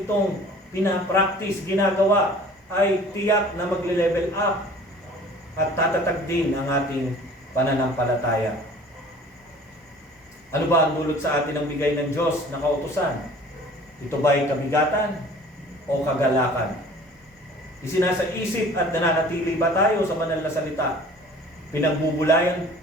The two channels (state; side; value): normal; both; correlation 0.47